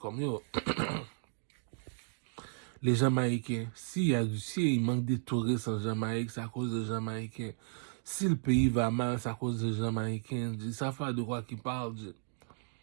yo. Les Jamaïcains, s'il manque des touristes en Jamaïque, c'est à cause des Jamaïcains. Si le pays va mal, c'est à cause des Jamaïcains. Ça fait de quoi qu'ils parlent.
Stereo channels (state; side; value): silent; left; 55 dB below the other